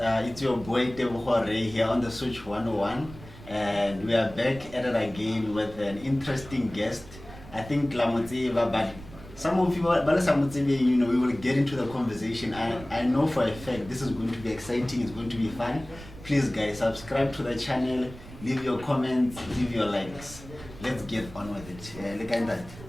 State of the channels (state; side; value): noise; right; rumble, 16 dB below the sound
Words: your boy Tebogo Ray here on the Switch 101, and we are back at it again with an interesting guest. I think Lamotseva, but some of you, you know, we will get into the conversation. I know for a fact this is going to be exciting, it's going to be fun. Please guys, subscribe to the channel, leave your comments, leave your likes. Let's get on with it. Look at that.